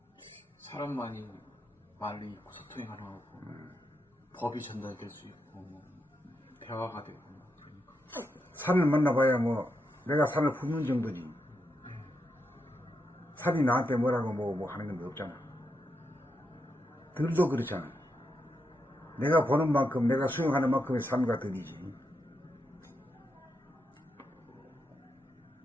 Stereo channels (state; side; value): normal; both; correlation 0.84